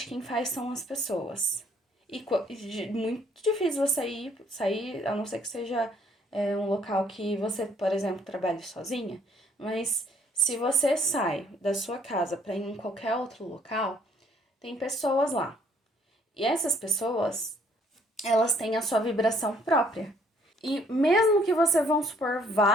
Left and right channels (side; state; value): both; normal; correlation 0.63